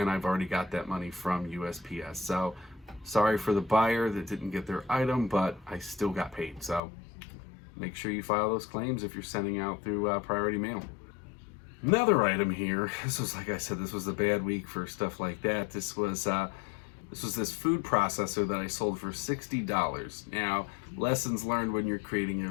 I've already got that money from USPS. So sorry for the buyer that didn't get their item, but I still got paid. So make sure you file those claims if you're sending out through priority mail. Another item here, this was, like I said, this was a bad week for stuff like that. This was this food processor that I sold for $60. Now, lessons learned when you're creating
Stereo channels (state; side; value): drops out; right; at 6.8 s